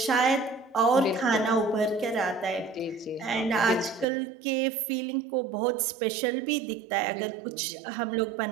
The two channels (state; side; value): drops out; left; at 4.0 s